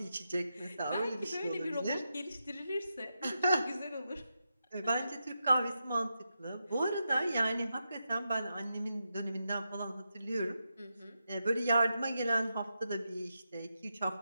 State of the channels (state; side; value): inverted; both; correlation -0.87